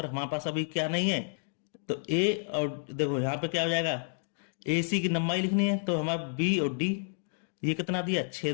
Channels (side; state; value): right; silent; 58 dB below the other